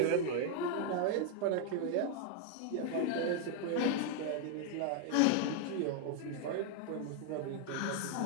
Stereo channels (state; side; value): different; both; correlation 0.00